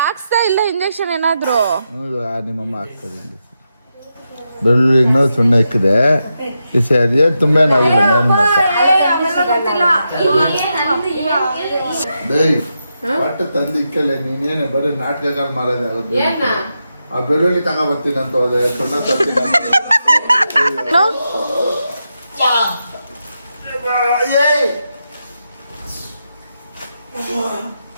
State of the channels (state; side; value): inverted; both; correlation -0.86